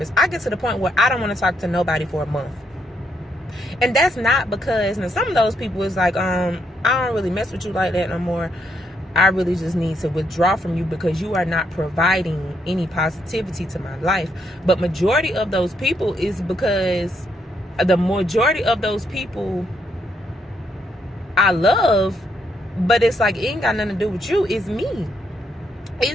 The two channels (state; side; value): normal; both; correlation 0.76